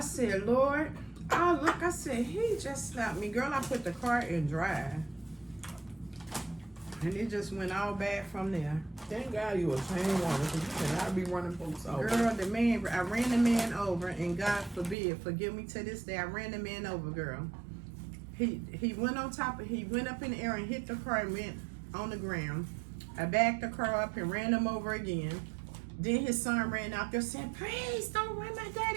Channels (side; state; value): left; drops out; at 15.0 s